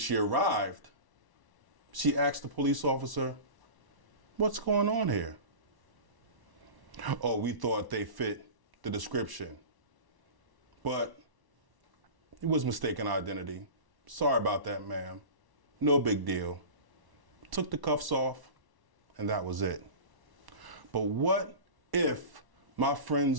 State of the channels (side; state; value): left; late; 1.1 ms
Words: arrived, she asked the police officer, "What's going on here?" Oh, we thought they fit the description, but it was mistaken identity. Sorry about that, ma'am. No big deal. Took the cuffs off, and that was it. But what if my